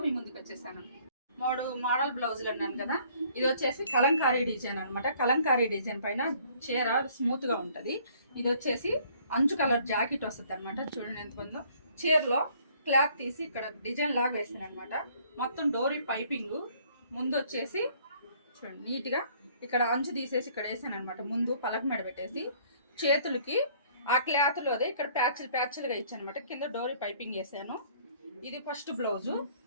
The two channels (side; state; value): both; inverted; correlation -0.59